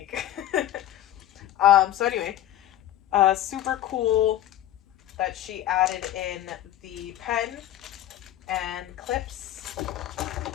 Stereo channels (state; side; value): quieter; right; 12.9 dB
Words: So anyway, super cool that she added in the pen and clips,